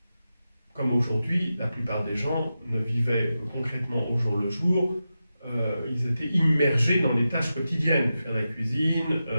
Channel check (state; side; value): inverted; both; correlation -0.91